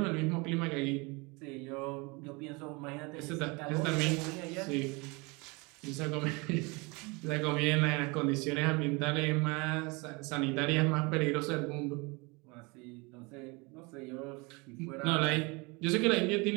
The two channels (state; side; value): quieter; left; 27.5 dB